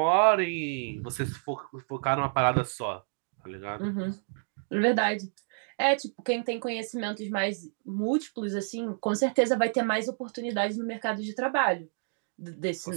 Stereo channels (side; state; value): left; silent; digital silence